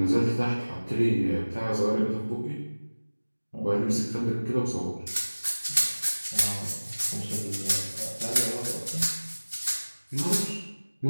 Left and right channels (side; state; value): both; inverted; correlation -1.00